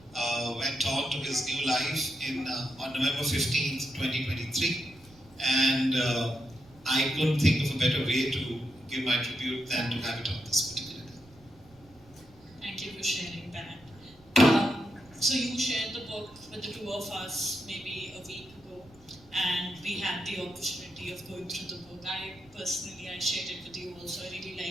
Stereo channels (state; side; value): noise; right; rumble, 26 dB below the sound